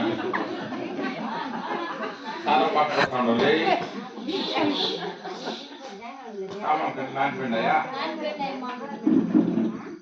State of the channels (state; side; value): identical; both; correlation 1.00